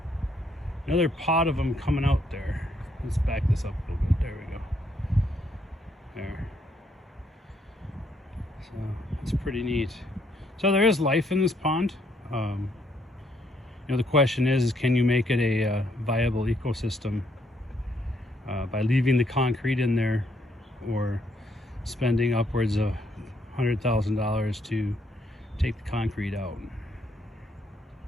pod of them coming out there. Let's back this up a little bit. There we go. There. So it's pretty neat. So there is life in this pond. You know, the question is can you make it a viable ecosystem by leaving the concrete in there, or spending upwards of $100,000 to take the concrete out.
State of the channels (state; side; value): normal; both; correlation 0.72